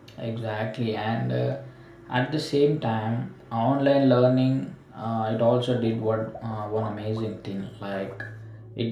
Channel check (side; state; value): both; identical; correlation 1.00